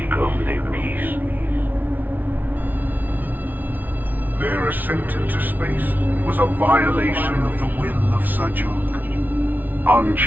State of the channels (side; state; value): left; late; 0.083 ms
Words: only peace. Their ascent into space was a violation of the will of Sajok.